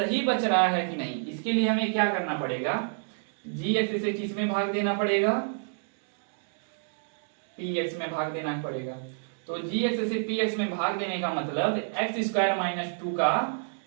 बच रहा है कि नहीं। इसके लिए हमें क्या करना पड़ेगा, gx से किस में भाग देना पड़ेगा, px में भाग देना पड़ेगा। तो gx से px में भाग देने का मतलब x² - 2 का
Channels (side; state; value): left; silent; digital silence